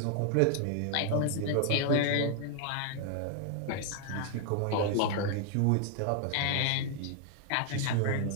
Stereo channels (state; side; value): different; both; correlation 0.00